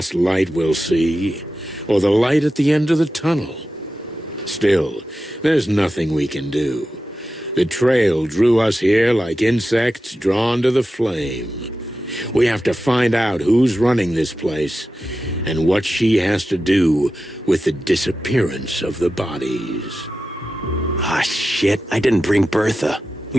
light we'll see? Or the light at the end of the tunnel? Still, there's nothing we can do. The trail drew us here like insects drawn to the flame. We have to find out who's running this place and what she has to do with the disappearance of the bodies. Ah, shit. I didn't bring Bertha.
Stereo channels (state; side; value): normal; both; correlation 0.92